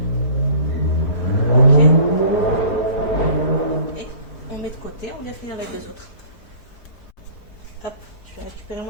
Ok. Et on met de côté, on vient finir les deux autres. Hop, je vais récupérer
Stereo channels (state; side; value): late; right; 4.8 ms